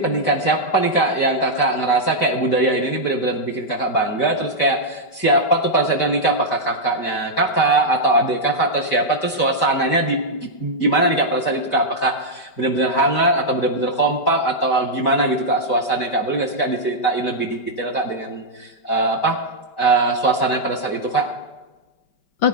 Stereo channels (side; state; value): right; late; 5.1 ms